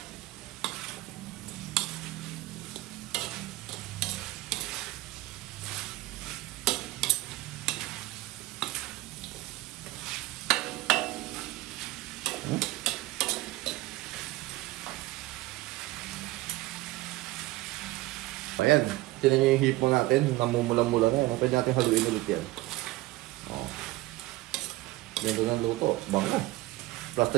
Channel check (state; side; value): quieter; left; 18.6 dB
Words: Ayan. Tinan nyo yung hipo natin, namumula-mula na yan. Pwede natin haluin ulit yan. Oh. Ganda ng luto. Bango. Plus